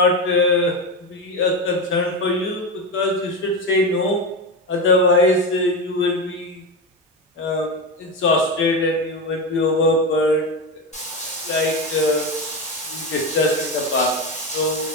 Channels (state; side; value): normal; both; correlation 0.16